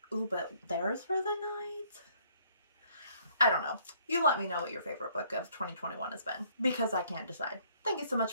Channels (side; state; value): both; inverted; correlation -0.64